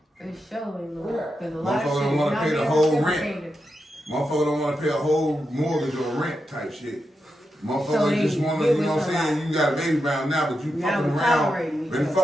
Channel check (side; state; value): both; normal; correlation 0.87